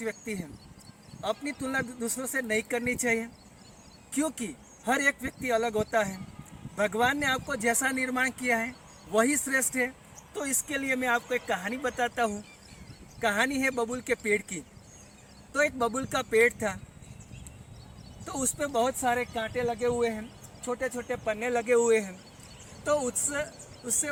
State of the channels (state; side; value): identical; both; correlation 1.00